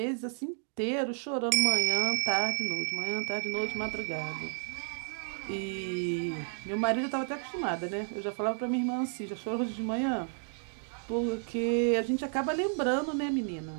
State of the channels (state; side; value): silent; left; 57 dB below the other